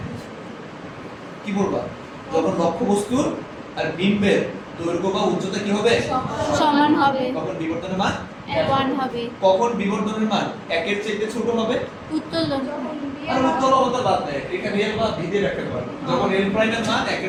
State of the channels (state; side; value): identical; both; correlation 1.00